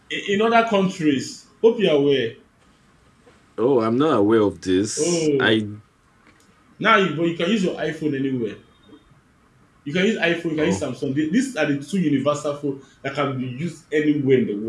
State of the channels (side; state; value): both; identical; correlation 1.00